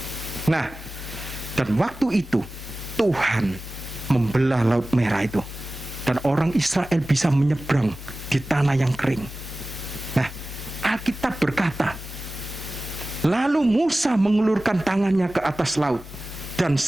Nah, dan waktu itu Tuhan membelah Laut Merah itu, dan orang Israel bisa menyeberang di tanah yang kering. Nah, Alkitab berkata, lalu Musa mengulurkan tangannya ke atas laut, dan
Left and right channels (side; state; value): both; normal; correlation 0.97